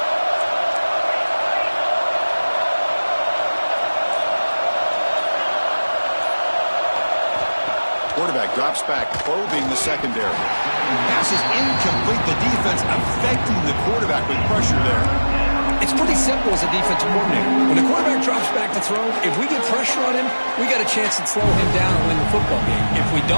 Quarterback drops back, probing the secondary. Pass is incomplete. The defense affecting the quarterback with pressure there. It's pretty simple as a defensive coordinator. When the quarterback drops back to throw, if we get pressure on him, we got a chance to slow him down and win the football game. If we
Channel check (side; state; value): both; inverted; correlation -1.00